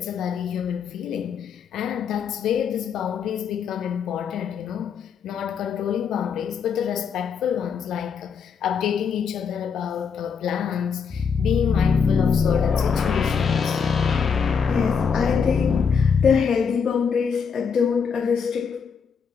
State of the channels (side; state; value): right; quieter; 6.3 dB